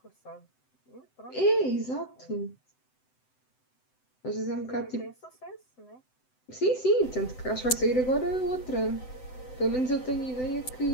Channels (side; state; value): right; late; 7.8 ms